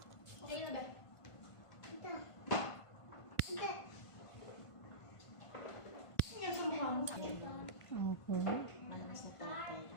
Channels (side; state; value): right; late; 1.5 ms